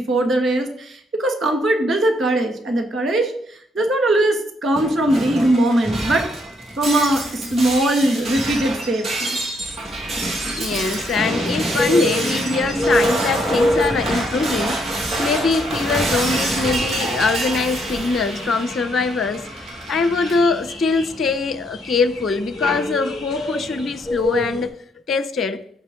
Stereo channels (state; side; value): normal; both; correlation 0.72